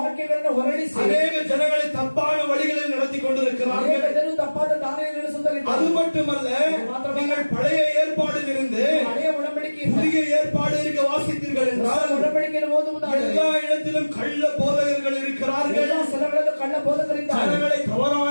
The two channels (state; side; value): inverted; both; correlation -1.00